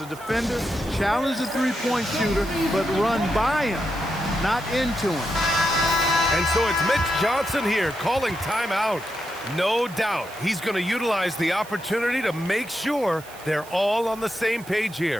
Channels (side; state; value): right; noise; hiss, 19 dB below the sound